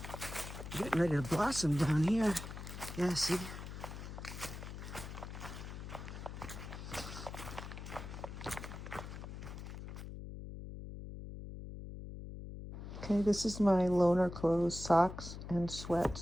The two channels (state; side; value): noise; left; hum, 9 dB below the sound